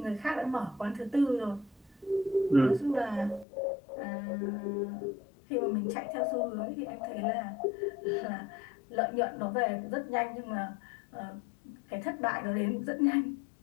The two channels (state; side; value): drops out; right; at 3.5 s